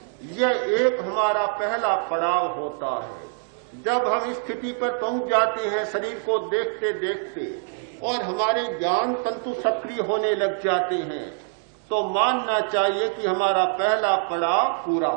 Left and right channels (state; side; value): silent; left; 62 dB below the other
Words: यह एक हमारा पहला पड़ाव होता है। जब हम इस स्थिति पर पहुंच जाते हैं शरीर को देखते देखते और हमारे ज्ञान तंतु सक्रिय होने लग जाते हैं, तो मानना चाहिए कि हमारा पहला पड़ाव पूरा